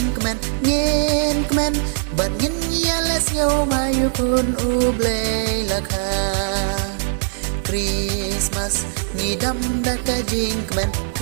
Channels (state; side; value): silent; left; 60 dB below the other